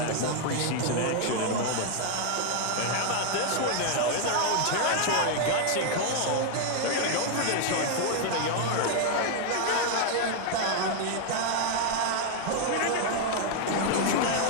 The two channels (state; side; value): different; both; correlation 0.00